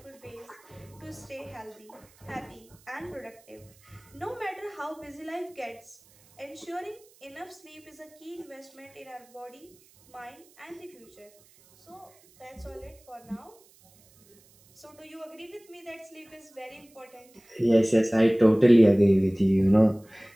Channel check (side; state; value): right; noise; hiss, 28 dB below the sound